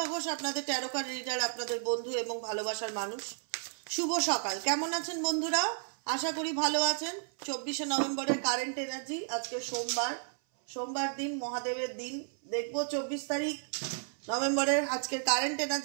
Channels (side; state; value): left; silent; 56 dB below the other